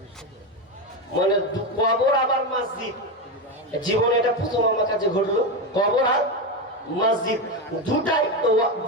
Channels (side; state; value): both; normal; correlation 0.13